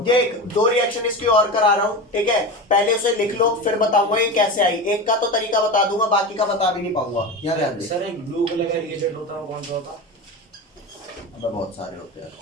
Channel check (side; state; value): both; normal; correlation 0.24